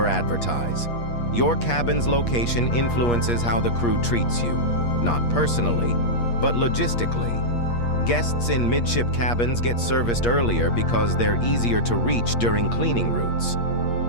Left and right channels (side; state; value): right; late; 8.5 ms